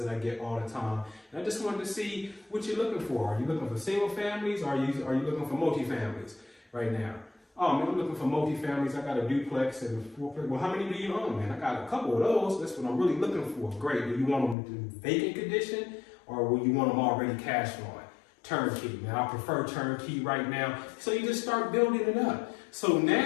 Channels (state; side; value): drops out; right; at 14.6 s